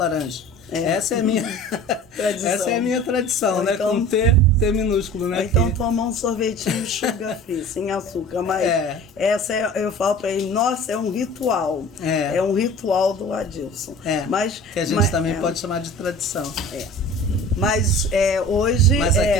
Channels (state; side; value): normal; both; correlation 0.42